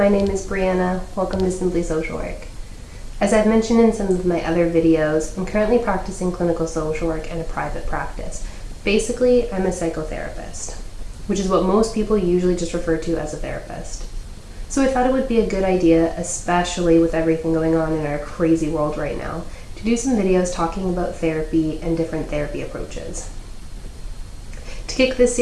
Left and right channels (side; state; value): both; identical; correlation 1.00